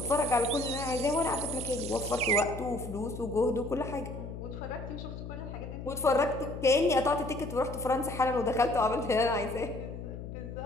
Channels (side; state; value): left; noise; hum, 9 dB below the sound